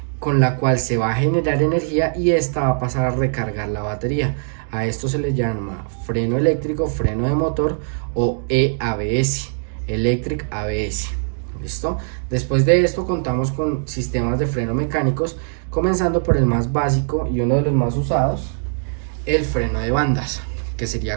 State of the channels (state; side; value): silent; left; digital silence